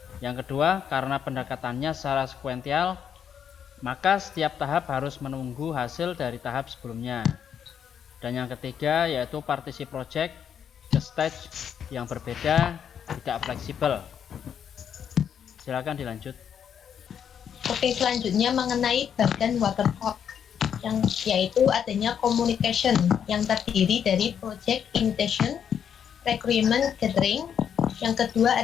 Yang kedua, karena pendekatannya secara sekuensial, maka setiap tahap harus menunggu hasil dari tahap sebelumnya. Dan yang ketiga yaitu partisi project ke stage yang berbeda, tidak fleksibel. Silakan dilanjut. Oke, selanjutnya mengenai badan waterfall, yaitu adanya communication yang terdiri dari project initiation, requirement gathering. Yang kedua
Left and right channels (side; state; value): right; quieter; 8.3 dB